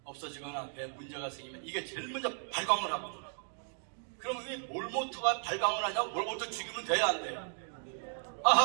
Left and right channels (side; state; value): left; silent; digital silence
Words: 없어지거나 배에 문제가 생기면 이게 제일 먼저 발광을 하거든요. 그럼 왜 몰모트가 발광을 하냐고? 몰모트 죽이면 돼야 안 돼요?